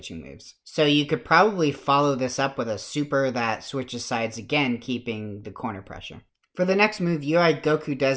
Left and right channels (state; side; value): identical; both; correlation 1.00